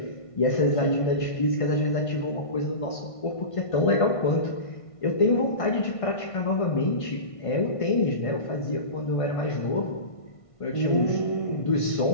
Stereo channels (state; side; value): late; right; 1.5 ms